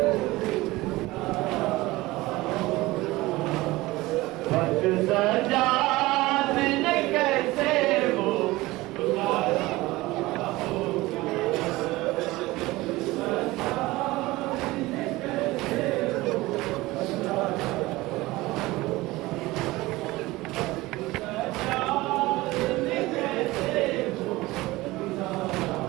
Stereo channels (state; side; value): quieter; left; 19.6 dB